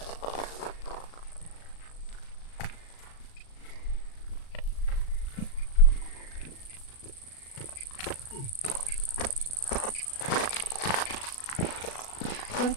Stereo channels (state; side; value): late; right; 37 ms